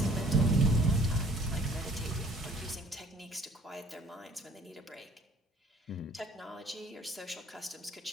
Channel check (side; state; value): both; normal; correlation 0.55